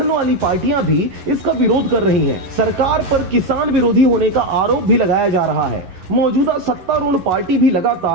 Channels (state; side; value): late; left; 11 ms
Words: वाली पार्टियां भी इसका विरोध कर रही हैं। सरकार पर किसान विरोधी होने का आरोप भी लगाया जा रहा है। मौजूदा सत्तारूढ़ पार्टी भी